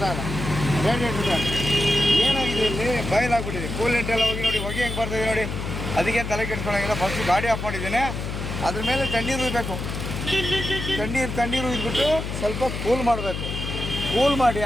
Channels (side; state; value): left; noise; hum, 5 dB below the sound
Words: ಇಲ್ಲ, radiator fan ಏನಾಗಿದೆ ಇಲ್ಲಿ ಬಯಲಾಗ್ಬಿಟ್ಟಿದೆ. ಕೂಲೆಂಟ್ ಎಲ್ಲ ಹೋಗಿ ನೋಡಿ, ಹೊಗೆ ಹೆಂಗೆ ಬರ್ತಿದೆ ನೋಡಿ. ಅದಕ್ಕೆ ತಲೆ ಕೆಡ್ಸ್ಕೊಳ್ಳೋಂಗಿಲ್ಲ. ಫಸ್ಟು ಗಾಡಿ ಆಫ್ ಮಾಡಿದ್ದೇನೆ, ಅದ್ರ ಮೇಲೆ ತಣ್ಣೀರು ಉಯ್ಬೇಕು. ತಣ್ಣೀರು ಉಯ್ದುಬಿಟ್ಟು ಸ್ವಲ್ಪ ಕೂಲ್ ಮಾಡಬೇಕು. ಕೂಲ್ ಮಾಡಿ